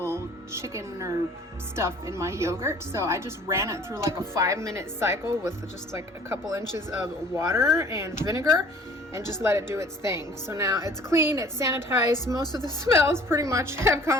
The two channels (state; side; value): normal; both; correlation 0.51